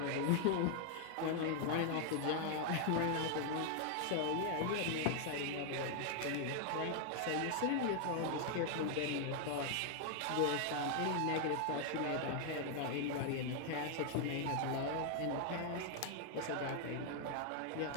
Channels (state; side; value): different; both; correlation 0.00